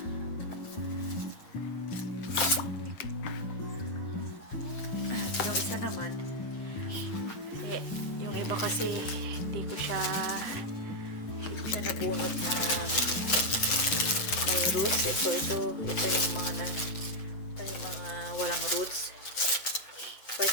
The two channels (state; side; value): late; right; 7.8 ms